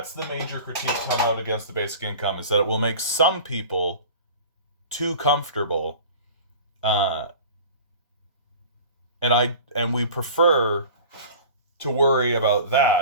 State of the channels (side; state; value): both; inverted; correlation -0.40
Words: the major critique coming out against the basic income, is that it will make some people too comfortable. And we prefer to worry about